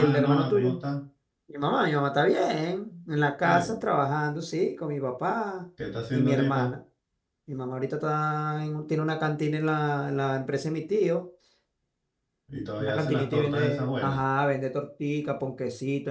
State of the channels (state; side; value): identical; both; correlation 1.00